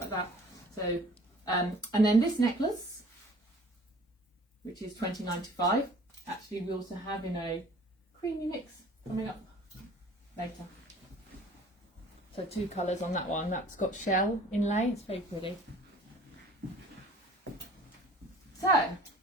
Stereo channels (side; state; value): both; normal; correlation 0.50